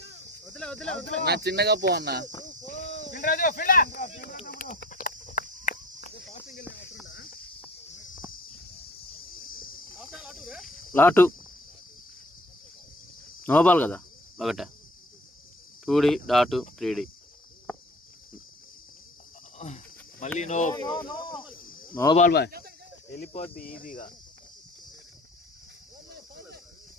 నా చిన్నగా పో అన్న. లాటు నో బాల్ కదా ఒకటే 2D డాటు 3D మళ్ళీ నో బాల్ బాయ్ వెళ్ళిపోద్ది ఈజీగా.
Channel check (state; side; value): normal; both; correlation 0.46